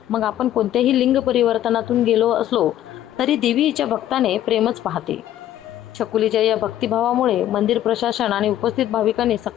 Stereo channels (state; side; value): quieter; right; 12.4 dB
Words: मग आपण कोणत्याही लिंग परिवर्तनातून गेलो असलो तरी देवी हिच्या भक्ताने प्रेमच पाहते। छकुलीच्या या भक्तिभावामुळे मंदिर प्रशासन आणि उपस्थित भाविकांनी